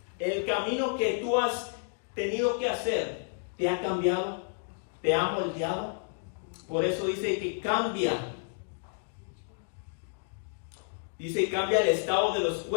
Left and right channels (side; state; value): right; silent; digital silence